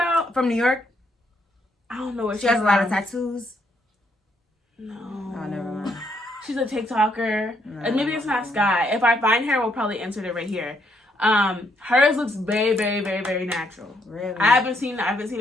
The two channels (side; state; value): both; normal; correlation 0.73